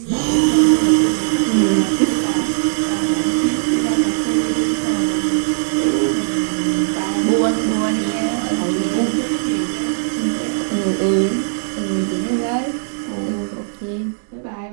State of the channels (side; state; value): left; silent; digital silence